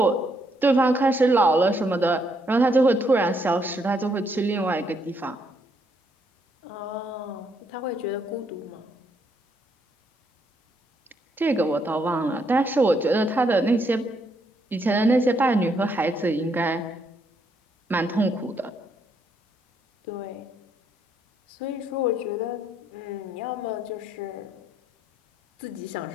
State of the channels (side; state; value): both; normal; correlation 0.74